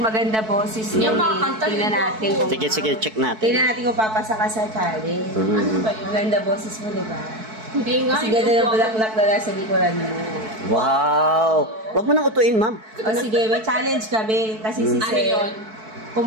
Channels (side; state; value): left; late; 4.6 ms